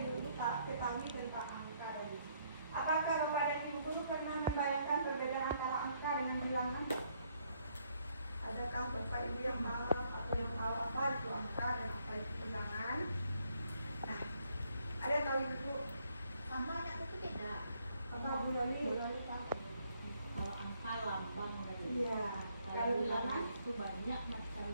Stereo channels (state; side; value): inverted; both; correlation -0.70